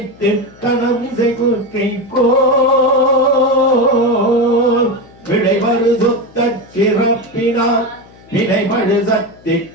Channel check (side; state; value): left; noise; hum, 25 dB below the sound